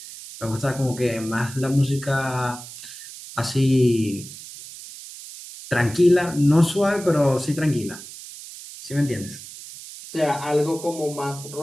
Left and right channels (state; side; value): noise; right; hiss, 14 dB below the sound